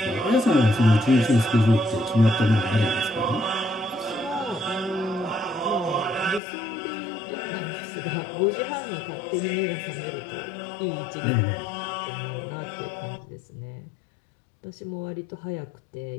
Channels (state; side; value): drops out; right; at 6.4 s